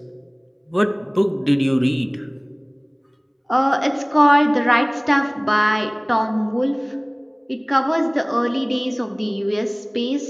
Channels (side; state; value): both; identical; correlation 1.00